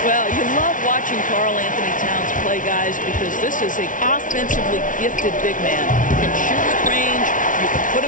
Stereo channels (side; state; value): right; late; 0.38 ms